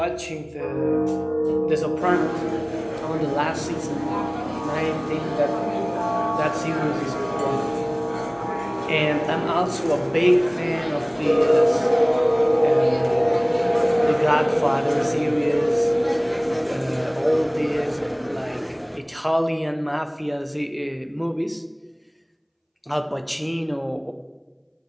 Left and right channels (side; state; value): both; identical; correlation 1.00